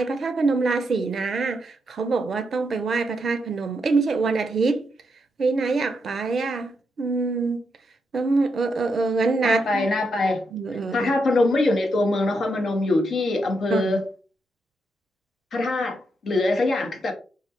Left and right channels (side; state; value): both; normal; correlation 0.81